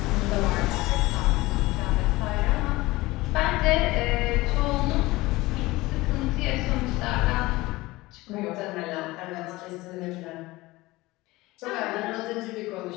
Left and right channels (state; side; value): quieter; right; 20.0 dB